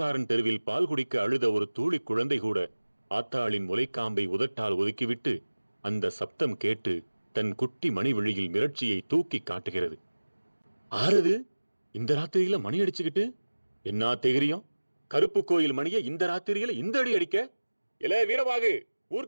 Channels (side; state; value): both; inverted; correlation -1.00